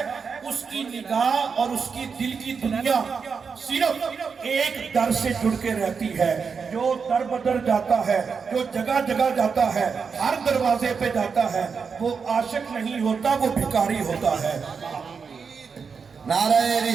اس کی نگاہ اور اس کی دل کی دنیا صرف ایک در سے جڑ کے رہتی ہے۔ جو در بدر جاتا ہے، جو جگہ جگہ جاتا ہے، ہر دروازے پہ جاتا ہے، وہ عاشق نہیں ہوتا، وہ بھکاری ہوتا ہے۔ نعرہ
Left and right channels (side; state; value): left; quieter; 5.7 dB